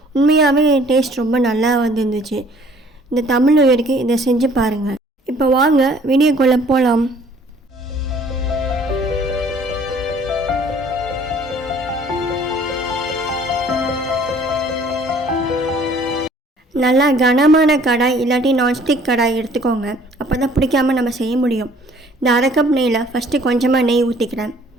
உண்மையாகவே டேஸ்ட் ரொம்ப நல்லா வந்துருந்துச்சு. இந்த தமிழ் நியூ இயருக்கு இதை செஞ்சு பாருங்கள். இப்போ வாங்க வீடியோக்குள்ளே போகலாம். நல்லா கனமான கடாய் இல்லாட்டி நான்ஸ்டிக் கடாய் எடுத்துக்கோங்க. அப்போ தான் பிடிக்காமல் நம்ம செய்ய முடியும். இந்த அரை கப் நெய்யில் ஃபஸ்ட்டு கொஞ்சமாக நெய் ஊற்றிக்கிறேன்.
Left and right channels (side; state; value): both; normal; correlation 0.56